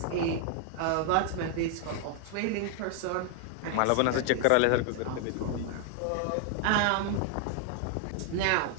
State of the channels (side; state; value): both; different; correlation 0.00